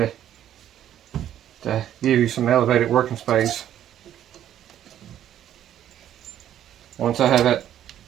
to give you some elevated working space. Once I have that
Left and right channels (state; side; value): quieter; left; 11.1 dB